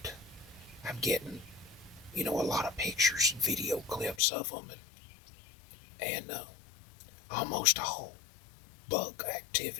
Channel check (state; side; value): drops out; right; at 4.2 s